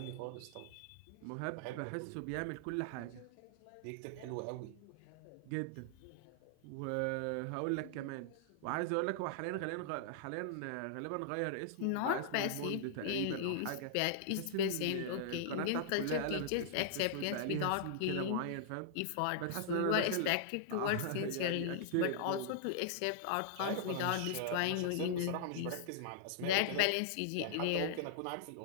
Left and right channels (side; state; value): both; different; correlation -0.01